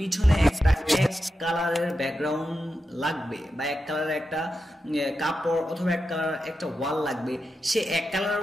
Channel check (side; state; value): both; normal; correlation 0.89